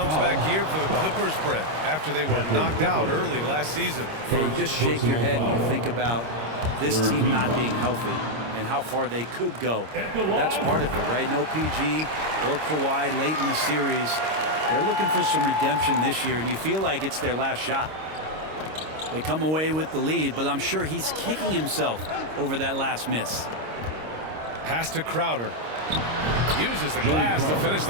year for the Clippers, Brett, after they were knocked out early last season. Yeah, you just shake your head and you think about this team not being healthy and how far they could go. That's part of it, right? No PG or Kawhi late in the series. They're looking for some redemption this year, and you feel like it's their last shot. They come away with the lead, but I'm sure he's kicking himself over that last miss. Pass to Crowder. Uses the glass to finish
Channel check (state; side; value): late; left; 26 ms